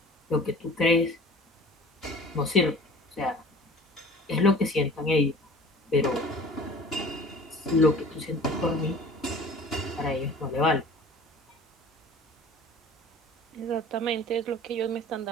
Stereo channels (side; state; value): both; normal; correlation 0.44